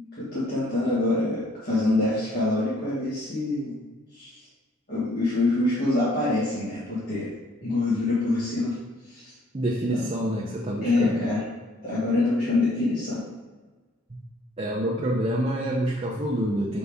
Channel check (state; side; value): normal; both; correlation 0.62